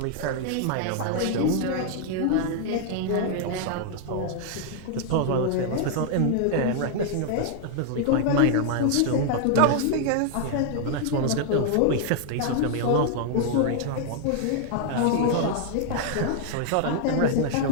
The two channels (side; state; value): both; different; correlation 0.00